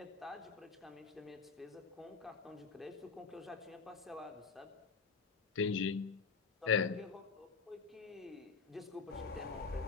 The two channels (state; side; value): quieter; right; 5.1 dB